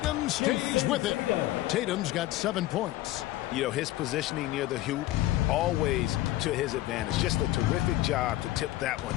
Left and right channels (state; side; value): quieter; right; 15.9 dB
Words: stays with it. Tatum's got 7 points. You know, his positioning near the hoop, always to his advantage. Just a terrific job to tip that one